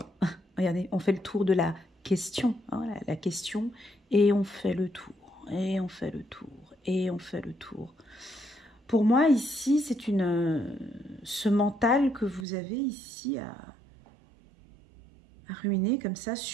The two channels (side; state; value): left; drops out; at 12.5 s